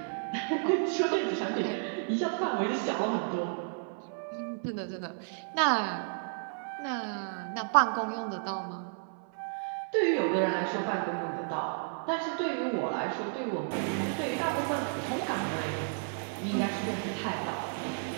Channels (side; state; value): left; silent; 55 dB below the other